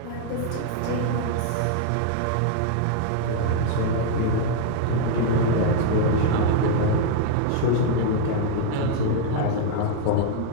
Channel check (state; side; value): different; both; correlation 0.00